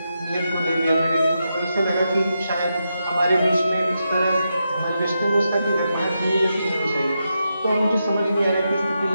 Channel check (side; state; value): both; inverted; correlation -0.86